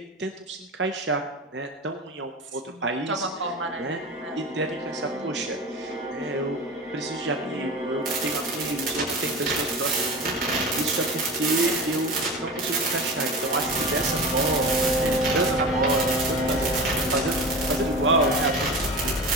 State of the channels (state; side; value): normal; both; correlation 0.30